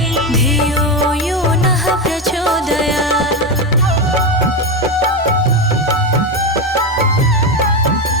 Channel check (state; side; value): normal; both; correlation 0.14